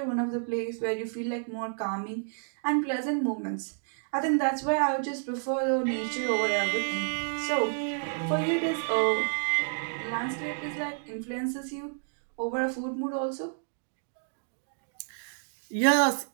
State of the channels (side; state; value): left; silent; digital silence